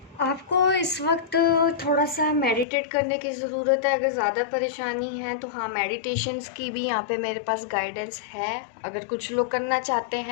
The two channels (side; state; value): right; drops out; at 2.7 s